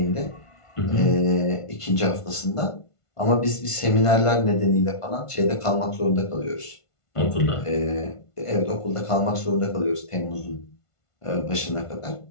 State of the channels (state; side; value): late; right; 1.5 ms